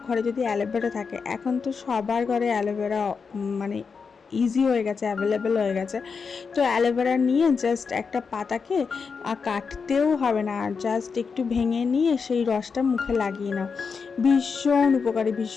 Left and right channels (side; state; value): right; quieter; 5.4 dB